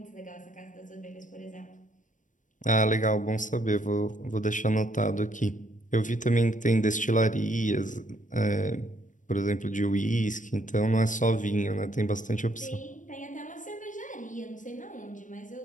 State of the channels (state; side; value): late; right; 0.37 ms